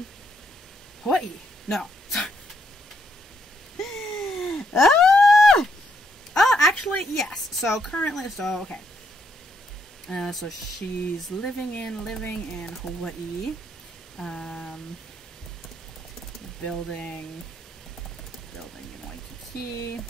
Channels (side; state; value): both; normal; correlation 0.76